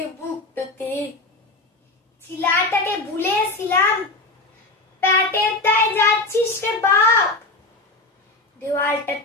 বুকটাতে। ছিলাটাকে ভুলেছিলাম, প্যাটের দায় যাচ্ছিস রে বাপ।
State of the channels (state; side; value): quieter; right; 3.0 dB